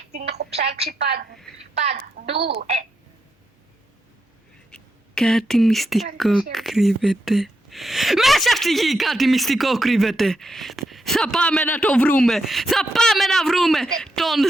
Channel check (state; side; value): normal; both; correlation 0.83